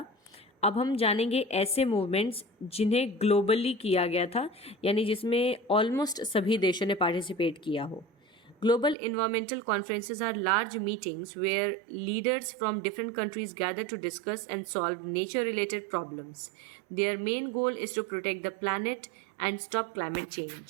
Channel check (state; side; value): drops out; left; at 9.0 s